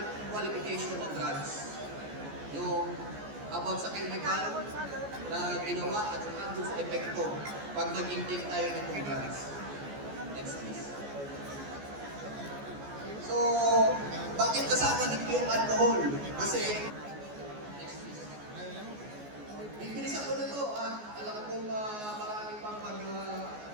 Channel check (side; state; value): left; late; 14 ms